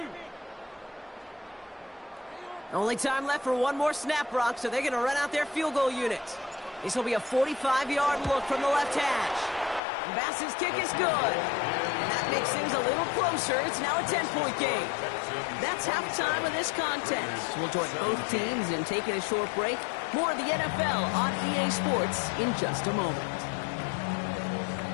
Only time left for one more snap, Brock, so they're going to run out their field goal unit. This will be a 45-yard look from the left hash. And Bass's kick is good. And that makes things a little closer. It's now a 10-point game. That's halftime of this contest. We'll join both teams in taking a short break. More of the NFL on EA Sports in just a moment.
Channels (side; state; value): right; drops out; at 9.8 s